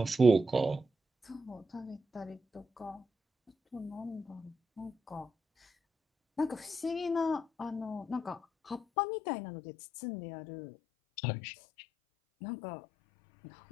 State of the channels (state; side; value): drops out; right; at 8.8 s